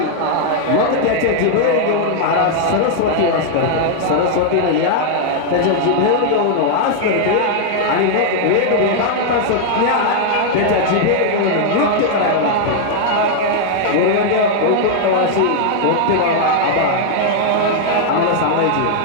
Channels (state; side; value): different; both; correlation 0.00